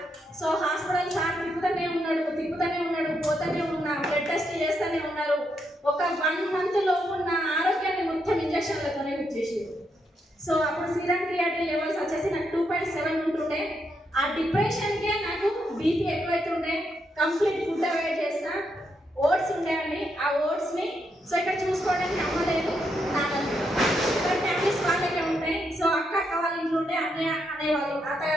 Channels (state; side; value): normal; both; correlation 0.80